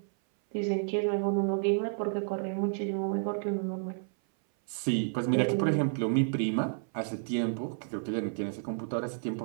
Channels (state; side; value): silent; left; 57 dB below the other